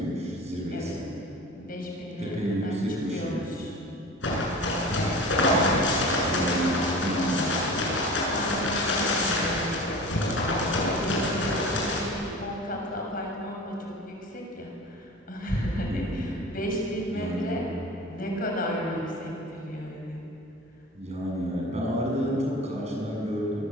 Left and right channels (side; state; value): both; normal; correlation 0.37